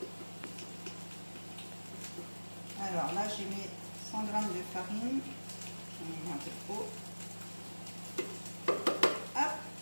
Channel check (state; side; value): inverted; both; correlation -1.00